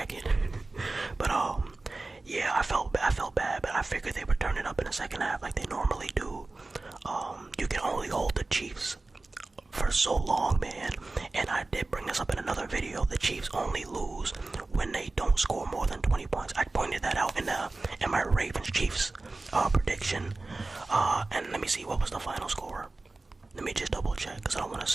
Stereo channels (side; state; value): left; quieter; 3.2 dB